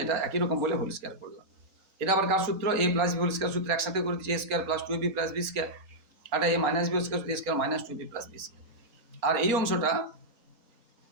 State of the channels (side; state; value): left; late; 4.3 ms